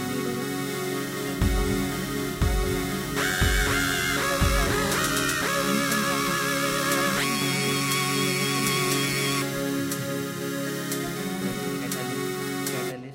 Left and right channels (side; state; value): both; identical; correlation 1.00